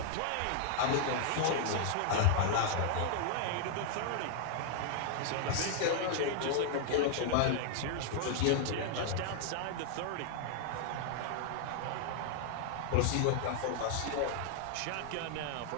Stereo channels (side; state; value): both; different; correlation -0.01